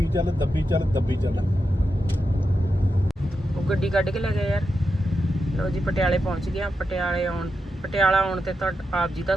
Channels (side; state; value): both; normal; correlation 0.87